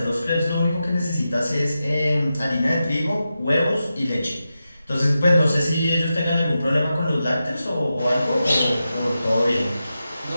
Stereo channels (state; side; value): inverted; both; correlation -0.90